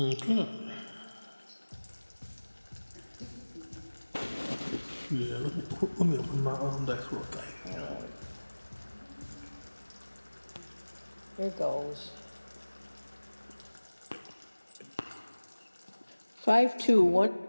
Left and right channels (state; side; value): inverted; both; correlation -1.00